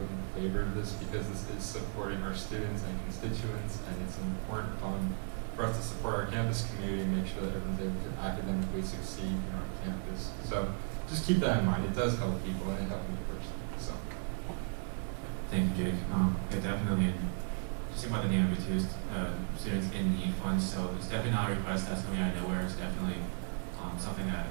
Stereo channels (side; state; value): left; silent; 54 dB below the other